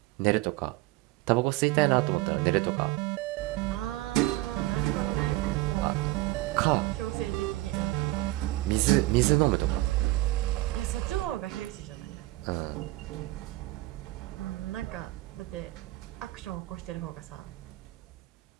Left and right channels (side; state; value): left; quieter; 18.8 dB